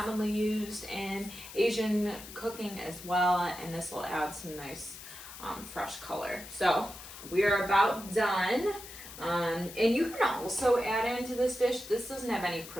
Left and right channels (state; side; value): noise; left; hiss, 14 dB below the sound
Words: used in Asian cooking as well, and this will add some nice fresh color. So we are about done. And you can also add into this dish, this doesn't have any